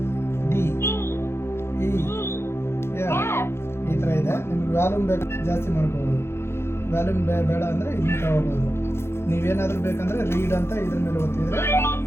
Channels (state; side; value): late; right; 0.12 ms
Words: ಈ ಥರ ಇದೆ. ನಿಮ್ಗೆ ವ್ಯಾಲ್ಯೂಮ್ ಬೇಕು ಜಾಸ್ತಿ ಮಾಡ್ಕೋಬೋದು, ವ್ಯಾಲ್ಯೂಮ್ ಬೇಡ ಅಂದರೆ ಇಲ್ಲಿ ತಗೋಬೋದು. ನೀವೇನಾದರೂ ಬೇಕಂದರೆ ರೀಡ್ ಅಂತ ಇದ್ರ ಮೇಲೆ ಒತ್ತಿದ್ರೆ